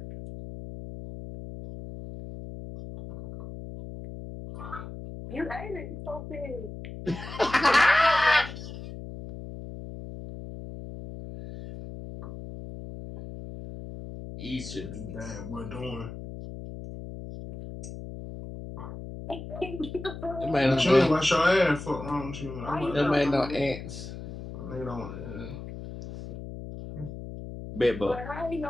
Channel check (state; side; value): noise; left; hum, 10 dB below the sound